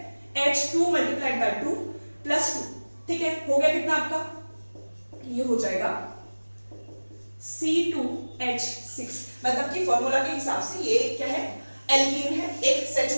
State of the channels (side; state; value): both; inverted; correlation -1.00